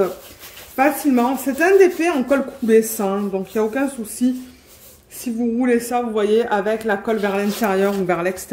facilement. C'est un DP en colle coulée, ça, hein, donc il n'y a aucun souci. Si vous roulez ça, vous voyez, avec la colle vers l'intérieur ou vers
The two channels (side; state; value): both; identical; correlation 1.00